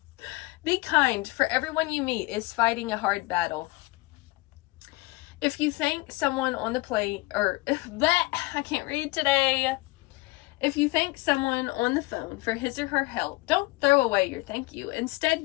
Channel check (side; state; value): right; quieter; 22.4 dB